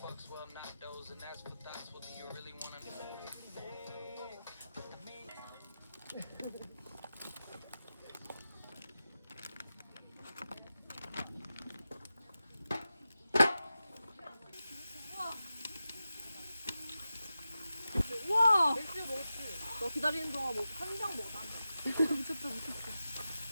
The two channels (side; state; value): both; inverted; correlation -0.92